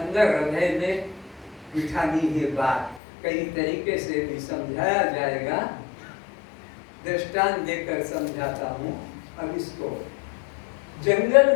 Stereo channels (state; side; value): drops out; right; at 3.0 s